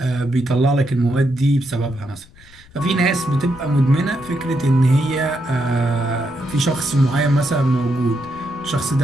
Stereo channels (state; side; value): noise; left; rumble, 25 dB below the sound